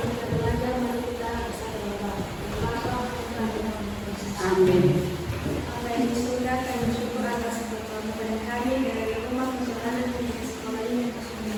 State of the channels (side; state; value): both; identical; correlation 1.00